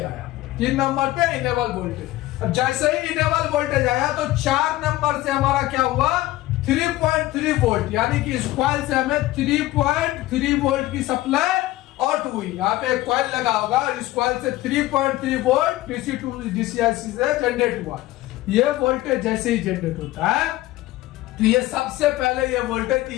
आया, 3 नंबर पे इनेबल वोल्टेज। अब जैसे ही इनेबल वोल्टेज आया तो 4 नंबर से हमारा क्या हुआ, 3.3 वोल्ट, यानी कि इस कॉइल से हमें 3.3 वोल्ट की सप्लाई आउट हुई। यहाँ पे एक कॉइल लगा होगा, इस कॉइल से 3.3 volt DC to DC IC से जनरेट हुआ। ये वोल्टेज जैसे ही जनरेट होता है तो ये सबसे पहले ये वोल्टेज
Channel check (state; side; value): quieter; right; 16.9 dB